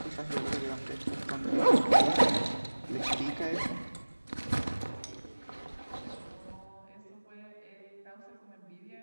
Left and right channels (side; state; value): both; inverted; correlation -1.00